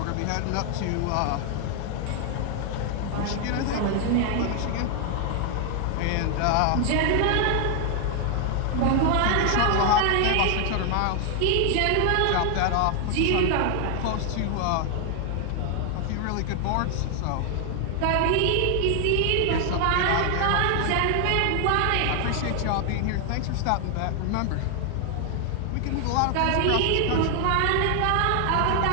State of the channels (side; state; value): both; different; correlation 0.00